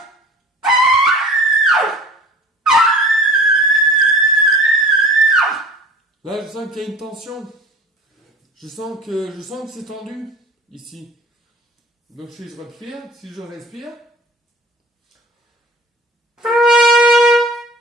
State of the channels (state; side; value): normal; both; correlation 0.44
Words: Là, je sens qu'il y a une tension. Je sens que c'est tendu ici. Donc si je respire,